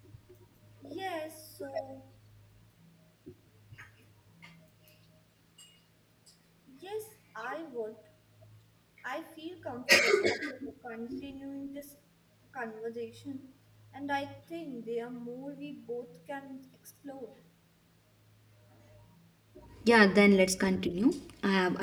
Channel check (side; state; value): both; identical; correlation 1.00